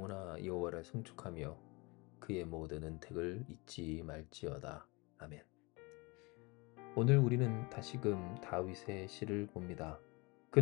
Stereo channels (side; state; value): right; quieter; 26.5 dB